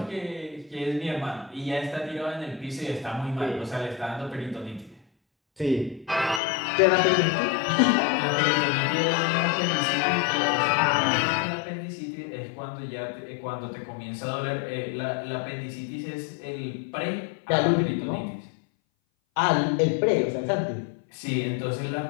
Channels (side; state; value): right; drops out; at 6.4 s